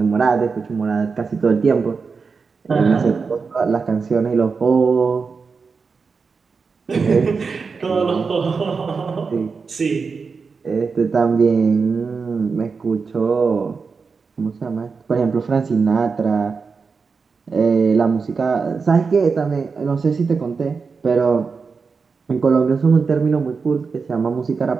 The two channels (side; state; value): left; quieter; 5.0 dB